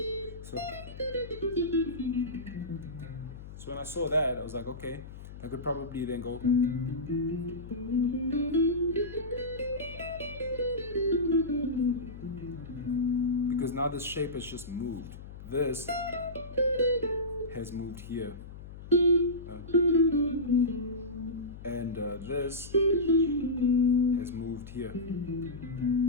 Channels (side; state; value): left; noise; hum, 14 dB below the sound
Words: so when I saw that, I was like, okay, I could probably then go because now this shape has just moved. This has moved here. And this has moved here.